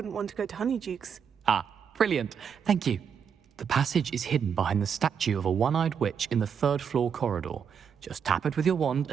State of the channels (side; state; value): left; quieter; 7.2 dB